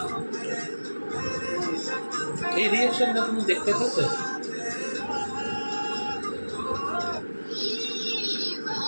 এই রিয়াকশনটা তুমি দেখতে পেতে?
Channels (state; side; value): inverted; both; correlation -1.00